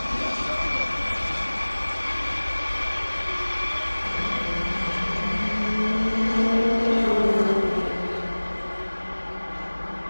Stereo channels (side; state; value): both; inverted; correlation -1.00